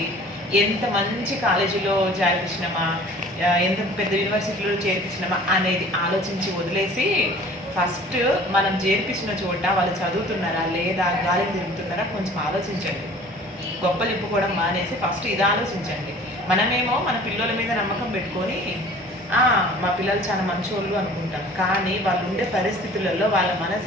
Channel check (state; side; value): normal; both; correlation 0.47